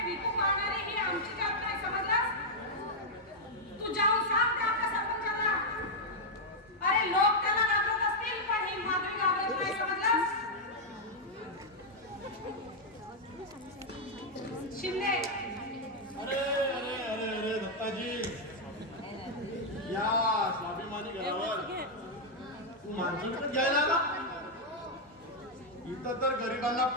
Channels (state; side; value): normal; both; correlation -0.02